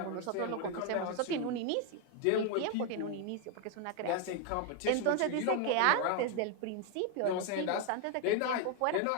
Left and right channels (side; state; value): both; different; correlation 0.01